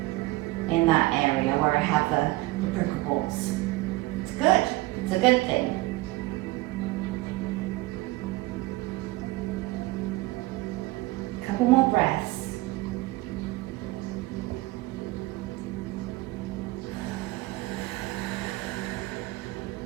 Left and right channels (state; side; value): quieter; left; 20.1 dB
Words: in that area where I have the prickle balls. It's good. It's a good thing. Couple more breaths.